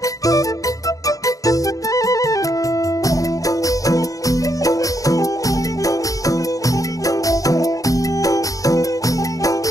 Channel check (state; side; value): late; right; 0.17 ms